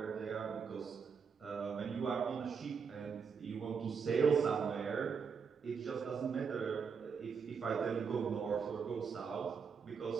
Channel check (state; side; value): quieter; left; 6.0 dB